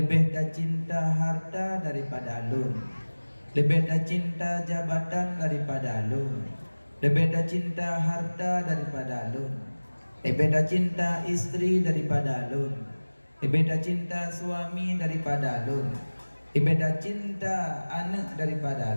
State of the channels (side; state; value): both; inverted; correlation -1.00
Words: tak cinta harta daripada alun, lebih tak cinta jabatan daripada alun, lebih tak cinta harta daripada alun, lebih tak cinta istri daripada alun, lebih tak cinta suami daripada alun, lebih tak cinta anak daripada